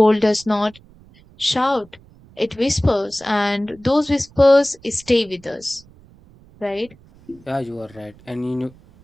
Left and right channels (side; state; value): right; noise; rumble, 26 dB below the sound